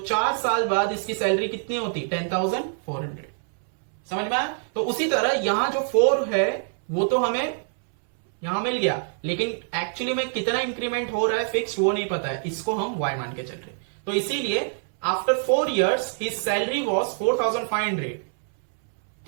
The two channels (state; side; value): silent; left; 62 dB below the other